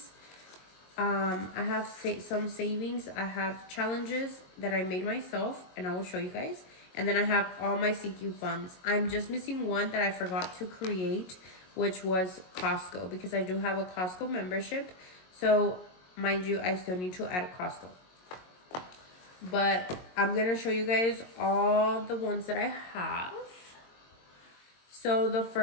I have some savings. I have challenges that I made myself, and I will show you guys. And then I have all my sinking funds. I'm just missing one that I forgot to create, which was Costco, because I do have a Costco membership. So mind you, I still need to add Costco. But I'm going to show you guys all the ones that I have. So the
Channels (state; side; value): late; right; 22 ms